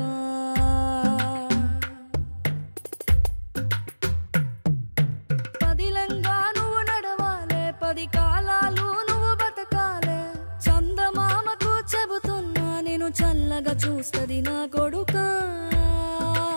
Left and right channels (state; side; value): inverted; both; correlation -1.00